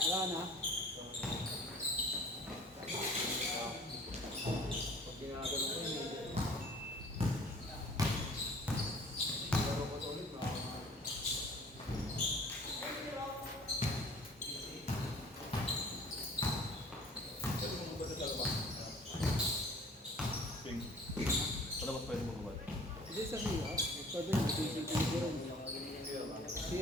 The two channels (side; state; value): both; normal; correlation 0.50